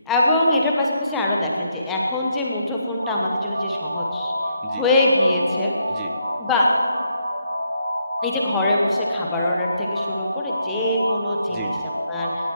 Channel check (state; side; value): inverted; both; correlation -0.75